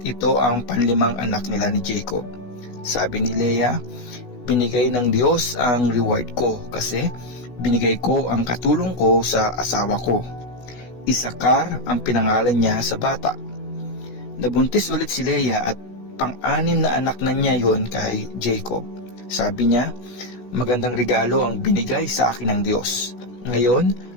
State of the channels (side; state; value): right; late; 16 ms